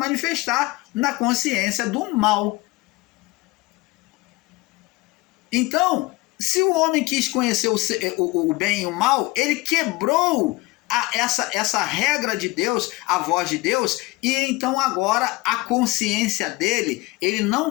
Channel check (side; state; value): right; quieter; 21.5 dB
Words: na consciência do mal. Então, se o homem quis conhecer o bem e o mal, ele quebrou essa regra de Deus, a voz de Deus, e então agora a consciência dele, ele não